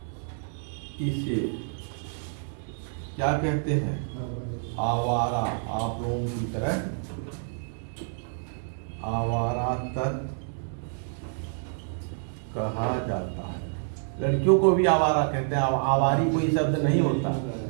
इसे क्या कहते हैं? आवारा। आप लोगों की तरह आवारा तत्व कहा जाता है। लड़कियों को भी आवारा कहते हैं। आवारी कोई शब्द नहीं होता।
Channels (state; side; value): silent; left; digital silence